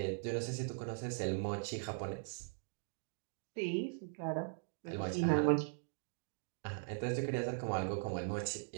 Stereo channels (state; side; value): silent; left; digital silence